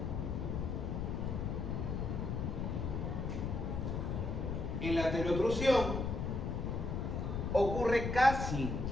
En la telotrusión ocurre casi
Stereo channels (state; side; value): noise; left; rumble, 1 dB below the sound